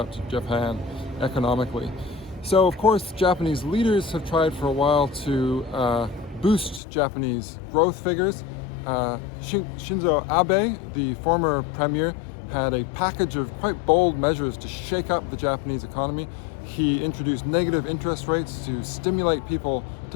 to Japan economically. So of course, Japanese leaders have tried for a while to boost Japanese growth figures. Shinzo Abe, the former premier, had a package of quite bold measures to shake up the Japanese economy. He introduced negative interest rates to stimulate people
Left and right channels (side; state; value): right; drops out; at 6.8 s